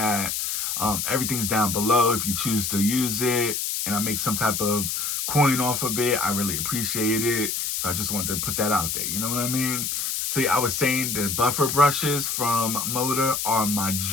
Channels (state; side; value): noise; left; hiss, 1 dB below the sound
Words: Everything's down below if you choose to use it. And I make some type of coin off of it. I really appreciate it. So I just wanted to put that out there. You know what I mean? See, I was saying the buffer brushes from Moda are my